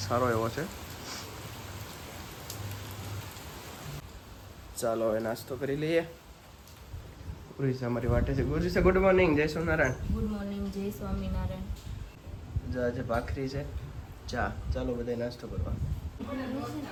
સારો એવો છે. ચાલો હવે નાસ્તો કરી લઈએ. ગુરુસા અમારી વાટે છે. ગુરુસા ગુડ મોર્નિંગ. જય સોમનારાયણ. Good morning. જય સ્વામિનારાયણ. જો આજે ભાખરી છે, ચા. ચાલો બધા નાસ્તો કરવા.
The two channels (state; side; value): identical; both; correlation 1.00